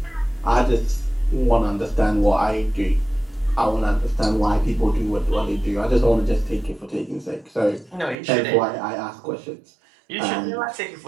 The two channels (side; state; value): left; drops out; at 8.2 s